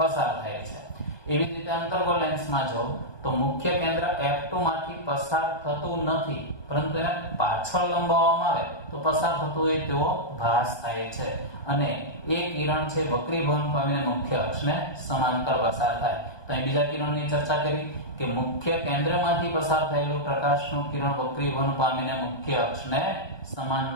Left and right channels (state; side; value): late; right; 1.2 ms